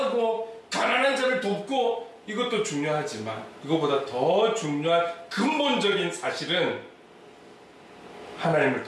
가난한 자를 돕고, 이것도 중요하지만 이것보다 더 중요한 근본적인 사실은 하나님을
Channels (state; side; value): identical; both; correlation 1.00